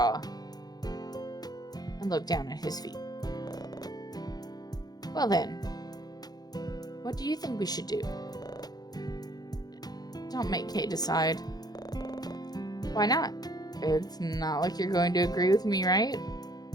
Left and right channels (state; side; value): late; right; 0.19 ms